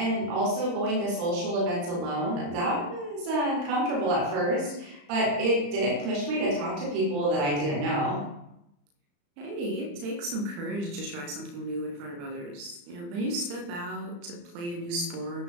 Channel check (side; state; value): left; late; 35 ms